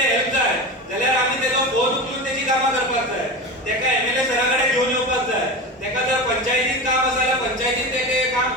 हेल्प जाय जाल्यार आमी तेजो फोन उखलून तेजी कामां करपाक जाय. तेका एमएलए सरा कडेन घेवन येवपाक जाय. तेका जर पंचायतीन काम आसा जाल्यार पंचायतीन तेका काम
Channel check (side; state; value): both; normal; correlation 0.25